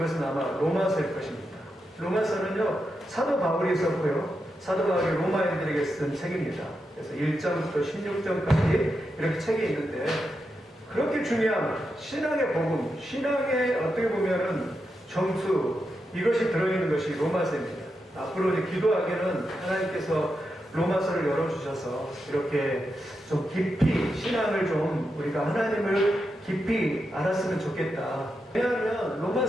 아마 로마서일 것입니다. 로마서는요, 사도 바울이 썼고요. 사도 바울이 로마인들에게 쓴 책입니다. 그래서 1장부터 16장까지 이렇게 책이 있는데, 그렇게 중요한 신앙의 복음, 신앙의 어떻게 보면은 정수, 이것이 들어있는 것이 로마서입니다. 앞으로 이제 기도하기는 하나님께서 로마서를 열어주셔서 이렇게 좀 깊이 신앙을 좀 우리가 하나님을 깊이 알았으면 좋겠다. 왜냐하면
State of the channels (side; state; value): both; normal; correlation 0.86